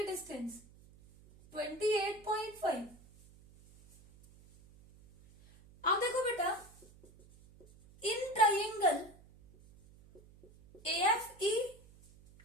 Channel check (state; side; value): noise; right; hum, 24 dB below the sound